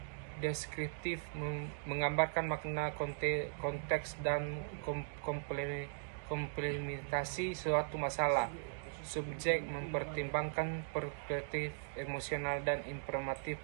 Deskriptif, menggambarkan makna, konteks, dan komplementasi suatu masalah. Subjek mempertimbangkan perspektif emosional dan informatif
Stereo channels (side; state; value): left; silent; digital silence